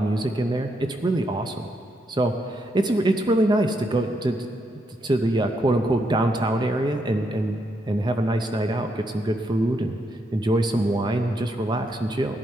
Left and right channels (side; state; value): both; normal; correlation 0.78